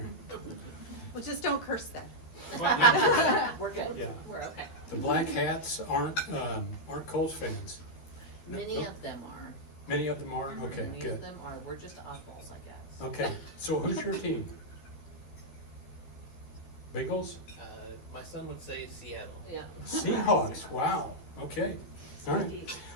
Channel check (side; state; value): right; late; 13 ms